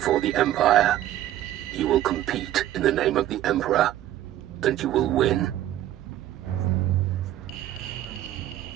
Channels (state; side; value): quieter; left; 13.1 dB